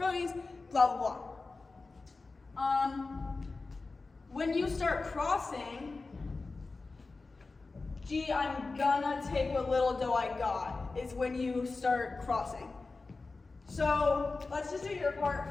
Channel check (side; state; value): right; quieter; 3.8 dB